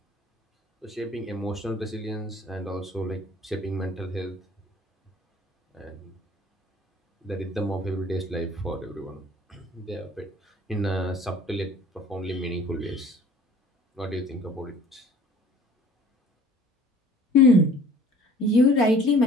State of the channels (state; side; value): normal; both; correlation 0.50